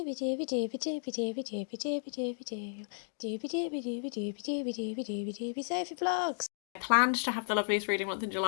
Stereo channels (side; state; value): right; silent; 55 dB below the other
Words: vlogs. I planned to have the loveliest reading month in